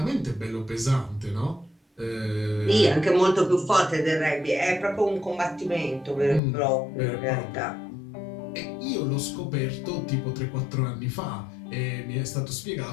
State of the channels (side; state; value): right; drops out; at 6.4 s